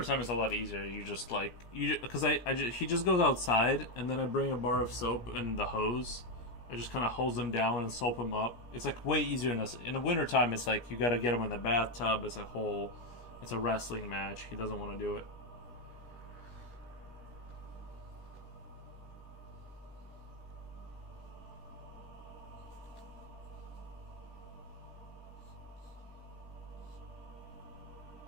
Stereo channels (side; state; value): right; late; 17 ms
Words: it's a lot easier. You just like because he just goes outside, and then I bring a bar of soap and the hose. I just kind of hose him down and soap him up. It's like way easier in the wintertime. It's like you got to get him in the bathtub. It's a wrestling match. He doesn't want to do it.